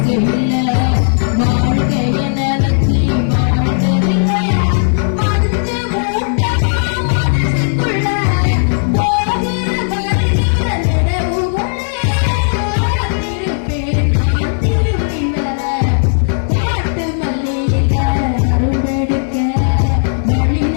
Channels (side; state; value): right; silent; digital silence